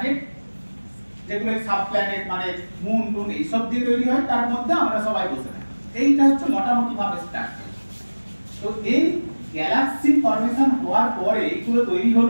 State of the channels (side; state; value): both; inverted; correlation -1.00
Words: যেগুলো সাব প্ল্যানেট মানে মুন টুন এইসব দিয়ে তৈরি হয়, তার মধ্যে আমরা সবাই বসে থাকি। এইটা হচ্ছে মোটামুটি ভাবে স্ট্রাকচার। তো এই গ্যালাক্সি ফর্মেশন হওয়ার পরে এইগুলো তৈরি